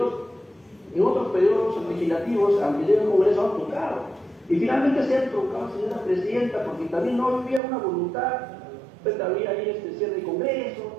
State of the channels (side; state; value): left; drops out; at 7.6 s